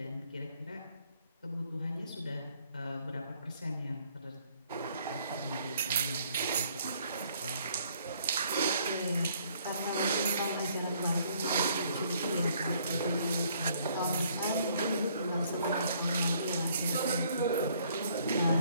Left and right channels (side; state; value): both; inverted; correlation -0.64